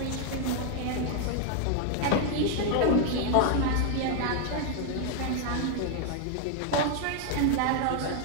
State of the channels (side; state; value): both; different; correlation 0.00